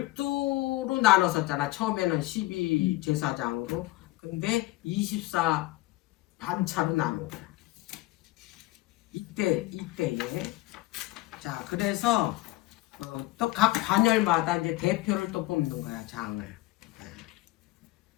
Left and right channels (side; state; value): right; quieter; 18.9 dB